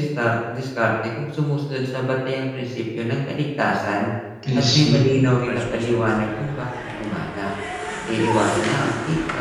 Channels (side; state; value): both; identical; correlation 1.00